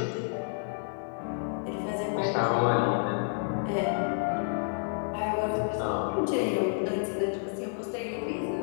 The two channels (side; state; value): right; silent; digital silence